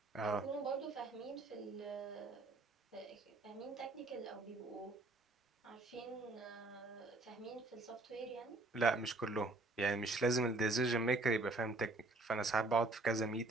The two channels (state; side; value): quieter; left; 3.0 dB